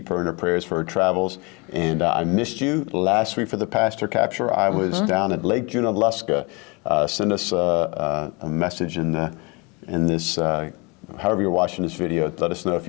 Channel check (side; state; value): right; quieter; 28.7 dB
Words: her in our prayers for her travels. And I missed you last week for the Pastor Capture. I was down at Lake Junaluska. Send us a message in this, however you're watching this video. Let us know if